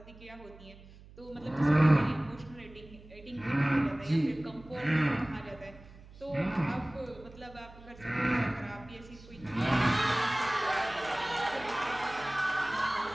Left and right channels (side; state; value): right; noise; hum, 20 dB below the sound